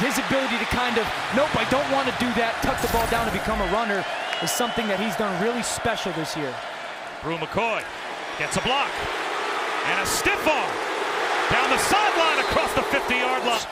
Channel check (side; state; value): both; identical; correlation 1.00